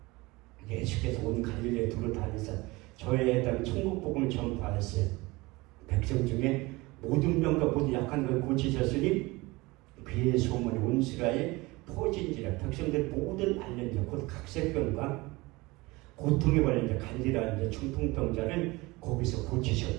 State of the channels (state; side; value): quieter; left; 22.5 dB